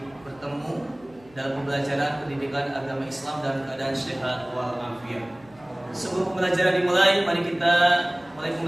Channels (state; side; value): noise; right; hum, 27 dB below the sound